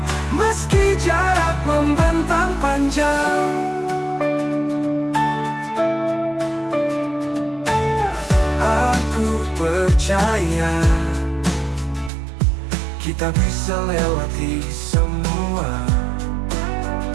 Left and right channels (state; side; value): drops out; left; at 12.1 s